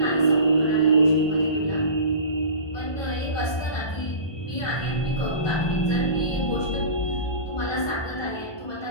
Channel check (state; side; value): late; right; 1.2 ms